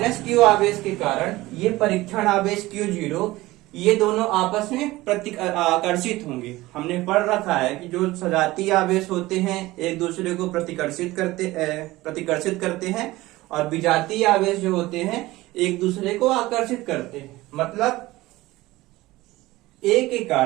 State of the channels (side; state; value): left; quieter; 18.7 dB